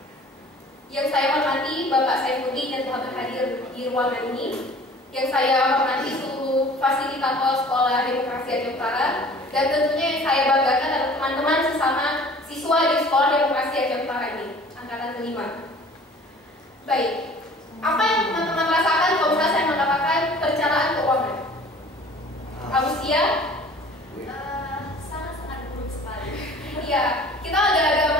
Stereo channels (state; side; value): normal; both; correlation 0.48